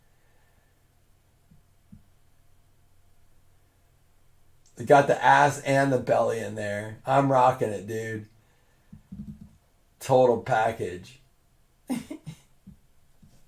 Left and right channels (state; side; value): identical; both; correlation 1.00